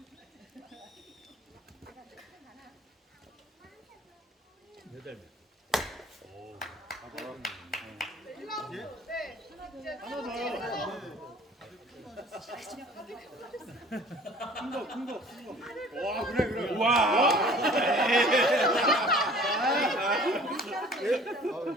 와 그래 그래. 와.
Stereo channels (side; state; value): both; normal; correlation 0.49